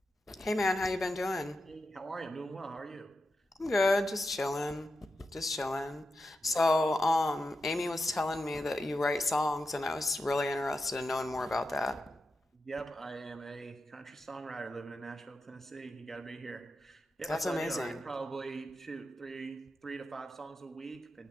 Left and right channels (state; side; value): normal; both; correlation 0.89